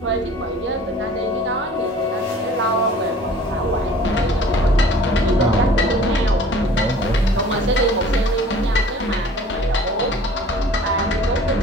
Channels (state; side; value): normal; both; correlation 0.48